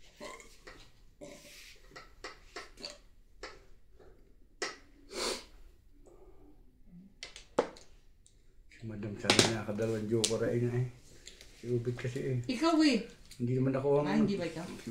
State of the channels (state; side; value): identical; both; correlation 1.00